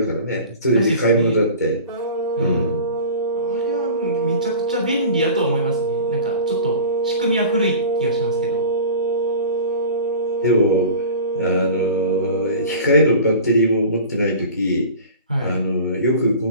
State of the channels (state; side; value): inverted; both; correlation -0.38